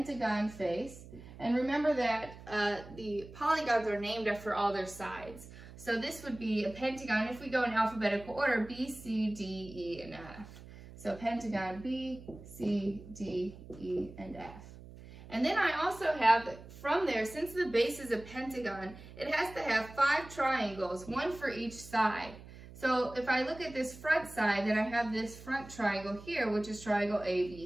face. And remember that the polygons are named after all their sides. So this would be a pentagon, if we go in alphabetical order, B, C, D, E, and F. So pentagon B, C, D, E, and F. And then I also have, from there, since the base is a pentagon, it has to have 5 triangles, one for each side. So if I look at this front side, then I have this front triangle here, which is triangle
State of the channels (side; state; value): right; noise; hum, 17 dB below the sound